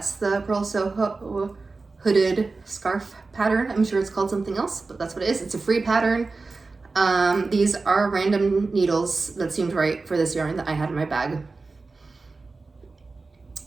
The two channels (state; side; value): quieter; left; 3.9 dB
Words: the Purl Soho hooded scarf pattern. I'm sure it's called something else, but that's what it is. It's a free pattern. These are random needles that seemed right for this yarn that I had in my bag.